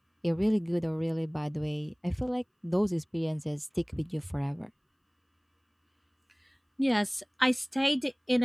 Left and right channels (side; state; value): both; identical; correlation 1.00